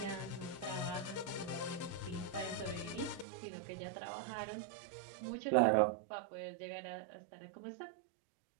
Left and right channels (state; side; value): drops out; left; at 3.2 s